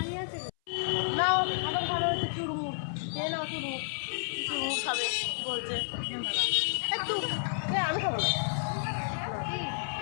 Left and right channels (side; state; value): right; silent; 57 dB below the other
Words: নাও এখন ভালো হচ্ছে চুরমুর, নাও চুরমুর খাবে বলছে একটু, আমি খাবো না।